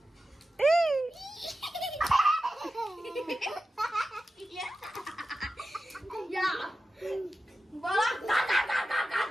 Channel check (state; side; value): normal; both; correlation 0.93